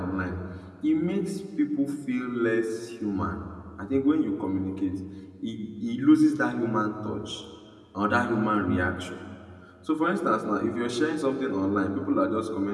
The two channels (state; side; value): identical; both; correlation 1.00